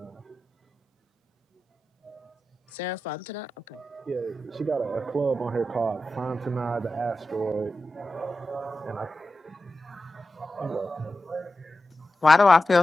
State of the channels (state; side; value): normal; both; correlation 0.91